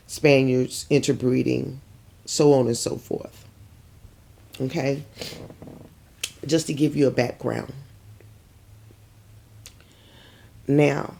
Spaniards interbreeding, so on and so forth. Okay? just to give you a background. Now,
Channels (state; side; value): identical; both; correlation 1.00